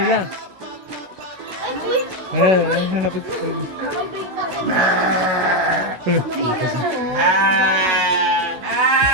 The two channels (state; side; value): late; left; 16 ms